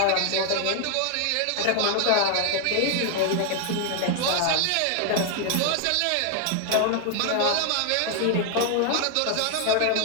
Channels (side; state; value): both; different; correlation 0.00